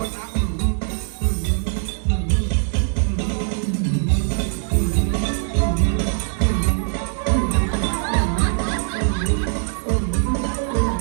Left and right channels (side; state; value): left; silent; 65 dB below the other